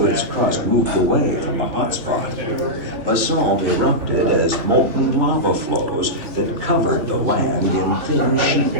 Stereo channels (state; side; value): late; left; 3.4 ms